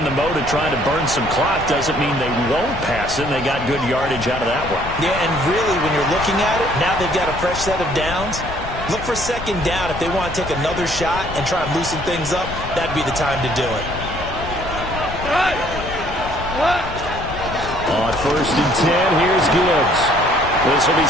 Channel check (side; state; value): left; noise; rumble, 10 dB below the sound